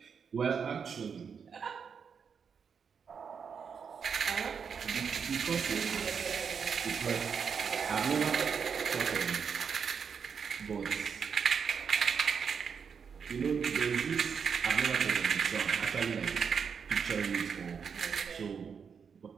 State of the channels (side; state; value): left; quieter; 6.5 dB